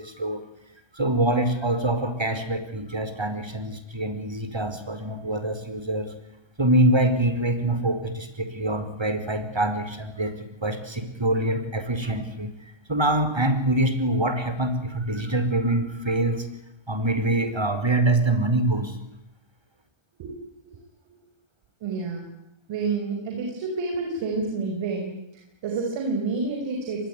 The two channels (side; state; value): left; late; 1.3 ms